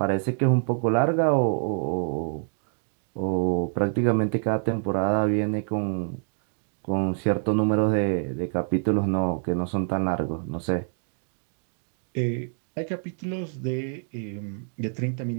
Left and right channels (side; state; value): left; silent; 61 dB below the other